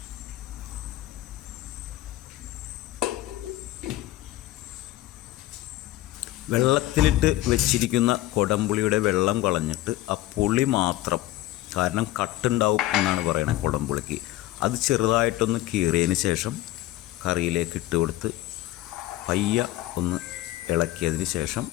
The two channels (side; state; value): right; quieter; 15.8 dB